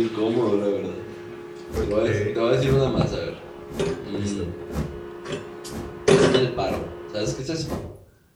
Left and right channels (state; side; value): identical; both; correlation 1.00